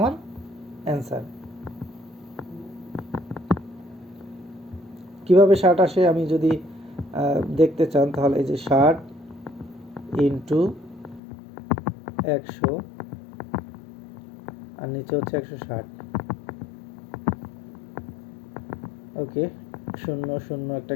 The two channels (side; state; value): right; drops out; at 11.2 s